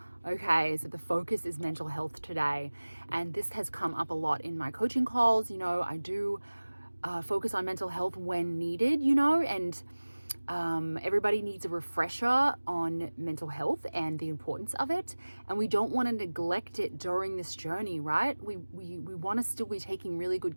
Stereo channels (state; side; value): inverted; both; correlation -1.00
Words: Okay, so the focus is mental health today. And this has come up a lot in my coaching calls. I do focus on mental health when needed, and everybody needs a refresher on mental health and the importance of it. And we don't want to neglect it during this journey, right? We want to still be taking really good